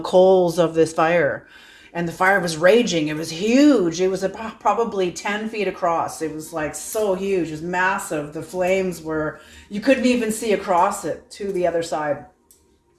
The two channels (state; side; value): identical; both; correlation 1.00